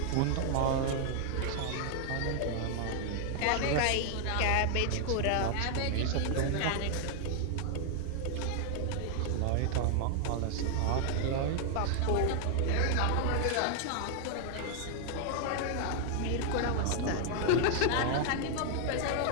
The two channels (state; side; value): different; both; correlation 0.00